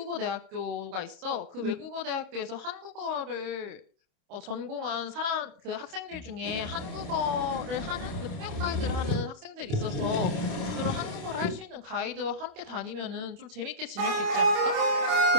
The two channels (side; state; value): left; late; 27 ms